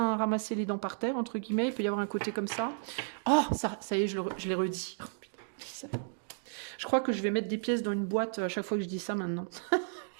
ramassé les dents par terre, entre guillemets. Il peut y avoir un côté comme ça. Oh, ça y est, je l'ai redit. Oh, putain, je crois que je vais mettre des pièces dans une boîte à chaque fois que je dis ça maintenant.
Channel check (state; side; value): silent; left; digital silence